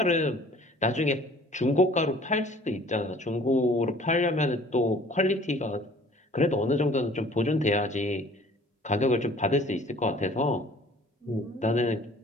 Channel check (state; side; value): normal; both; correlation 0.51